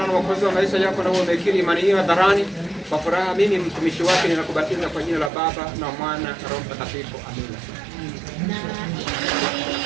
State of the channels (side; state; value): left; drops out; at 5.3 s